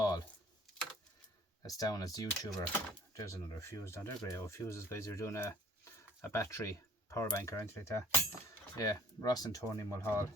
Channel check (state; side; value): normal; both; correlation 0.54